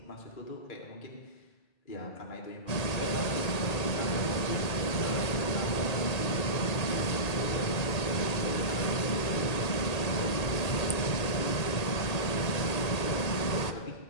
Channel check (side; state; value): right; late; 1.8 ms